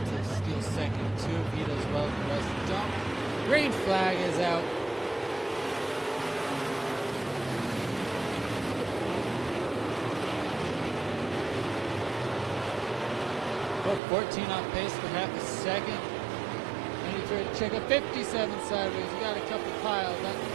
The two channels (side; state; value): left; drops out; at 14.0 s